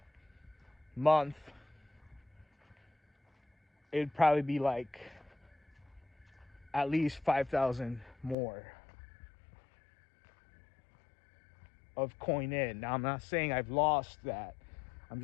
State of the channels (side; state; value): right; drops out; at 8.3 s